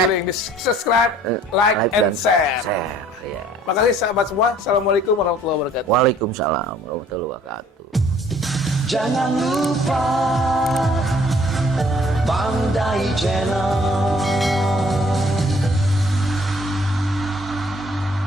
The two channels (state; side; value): normal; both; correlation 0.57